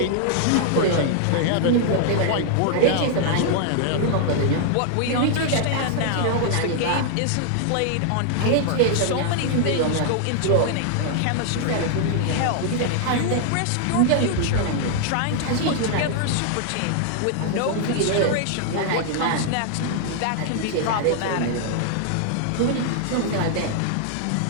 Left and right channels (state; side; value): different; both; correlation 0.00